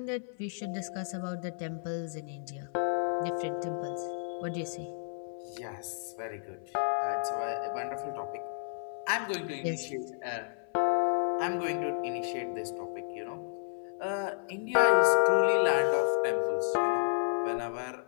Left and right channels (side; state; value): right; silent; 56 dB below the other